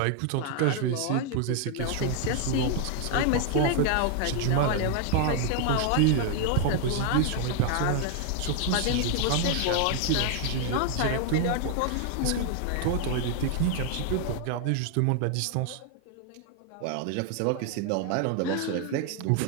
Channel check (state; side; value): different; both; correlation 0.00